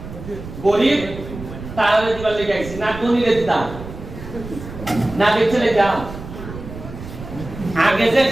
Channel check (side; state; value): right; noise; rumble, 12 dB below the sound